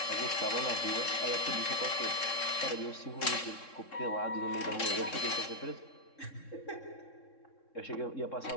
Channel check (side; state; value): right; late; 3.7 ms